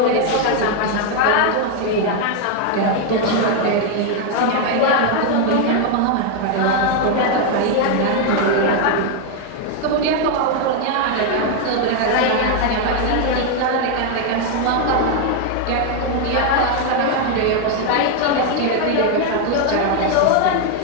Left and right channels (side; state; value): both; different; correlation 0.01